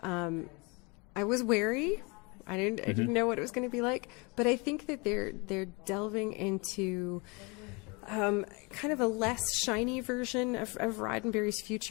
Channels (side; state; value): right; quieter; 29.1 dB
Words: I was wary. I didn't know what it was going to be like, but I think that they're delving into kind of a less shiny version of Roddenberry's